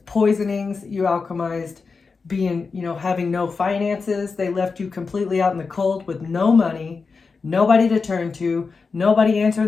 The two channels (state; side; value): quieter; right; 4.7 dB